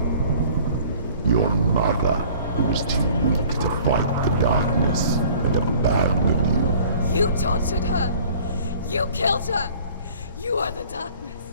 Your mother, who was too weak to fight the darkness and abandoned you. You tortured her! You killed her! You are the darkness!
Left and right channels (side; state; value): both; inverted; correlation -0.51